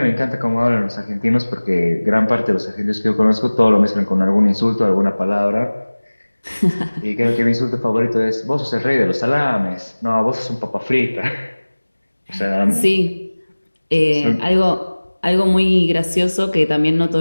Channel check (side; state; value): both; inverted; correlation -1.00